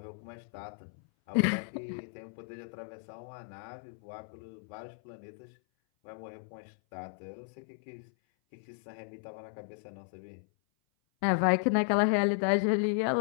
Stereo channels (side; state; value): right; silent; 55 dB below the other